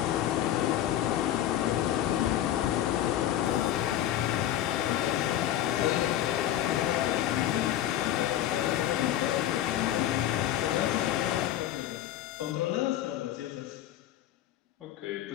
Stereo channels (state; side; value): quieter; right; 12.1 dB